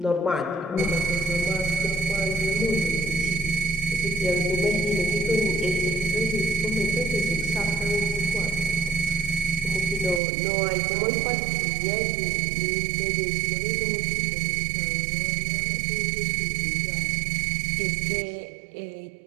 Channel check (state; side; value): drops out; left; at 10.2 s